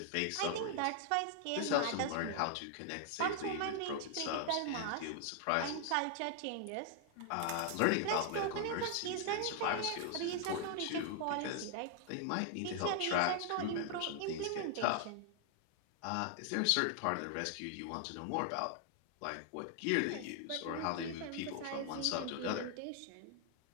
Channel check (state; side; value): different; both; correlation 0.00